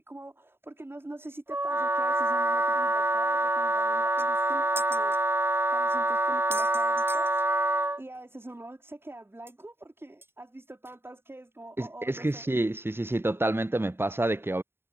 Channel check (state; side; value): late; left; 0.11 ms